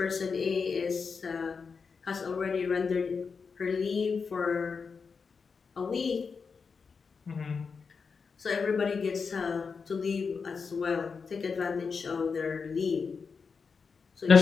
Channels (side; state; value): right; quieter; 5.3 dB